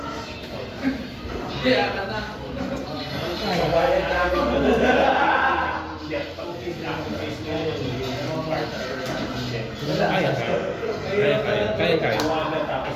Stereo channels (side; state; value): both; identical; correlation 1.00